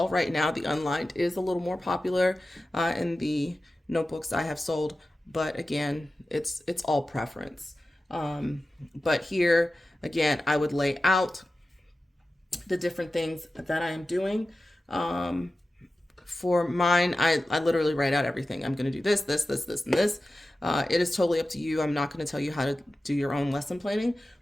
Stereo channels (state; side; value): normal; both; correlation 0.94